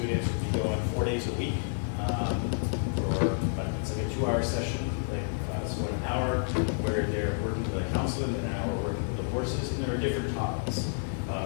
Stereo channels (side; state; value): right; silent; digital silence